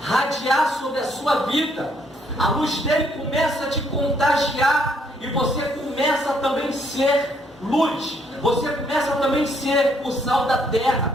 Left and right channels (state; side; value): normal; both; correlation 0.69